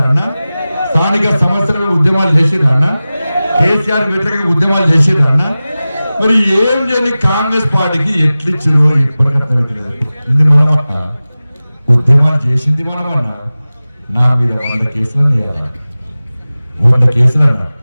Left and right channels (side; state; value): both; inverted; correlation -0.97